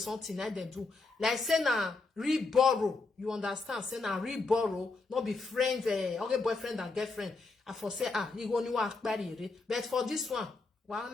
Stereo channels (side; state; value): right; quieter; 3.8 dB